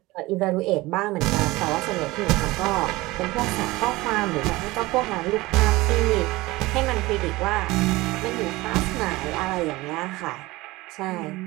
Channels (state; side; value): quieter; left; 20.3 dB